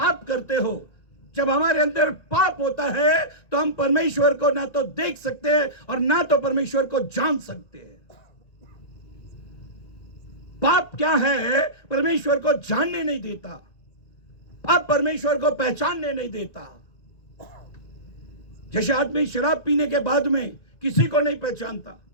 करते हो, जब हमारे अंदर पाप होता है तो हम परमेश्वर को ना तो देख सकते हैं और ना तो परमेश्वर को जान सकते हैं। पाप क्या है? परमेश्वर को जानने नहीं देता, पाप परमेश्वर को पहचानने नहीं देता। जैसे आदमी शराब पीने के बाद में किसी को नहीं पहचानता,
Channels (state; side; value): late; right; 1.9 ms